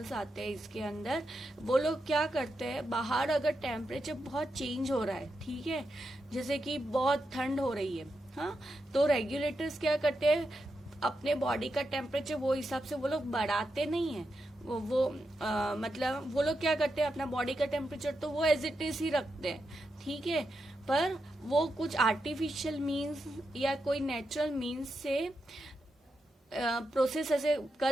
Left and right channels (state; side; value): normal; both; correlation 0.86